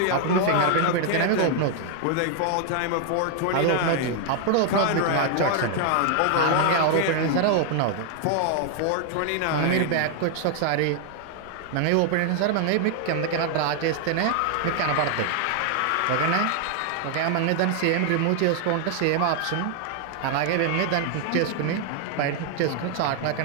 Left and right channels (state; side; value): different; both; correlation 0.00